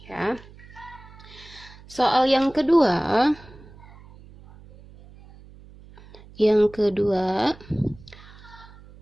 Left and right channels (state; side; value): noise; right; hum, 21 dB below the sound